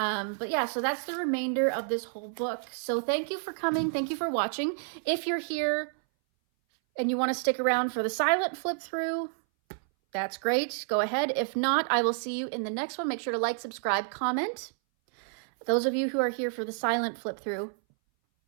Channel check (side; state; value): left; silent; 58 dB below the other